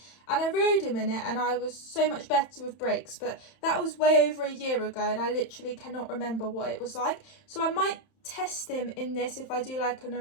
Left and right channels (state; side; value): late; right; 31 ms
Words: And I rode him in it and I was so much better with brakes. But that was way over a year ago and I literally cannot remember what it was like. So I might test him in this if I do like an